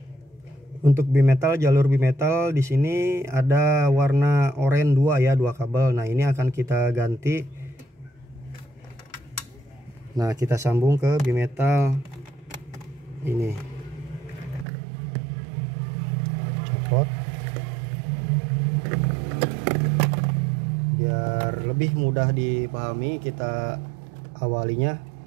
untuk bimetal, jalur bimetal di sini ada warna oranye 2 ya, 2 kabel. Nah, ini akan kita ganti. Nah, kita sambung ke bimetal ini. Copot. Biar lebih mudah dipahami, kita awalinya,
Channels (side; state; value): left; drops out; at 14.7 s